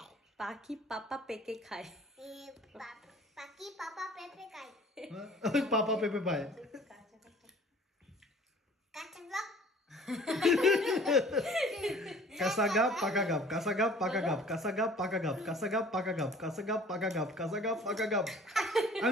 পাখি পাপা পেকে খায়। ওই পাপা পেঁপে পায়। কাঁচা গাপ পাকা গাপ, কাঁচা গাপ পাকা গাপ, কাঁচা গাপ পাকা গাপ, কাঁচা গাপ পাকা গাপ, কাঁচা গাপ পাকা গাপ, কাঁচা গাপ পাকা গাপ।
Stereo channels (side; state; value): both; normal; correlation 0.50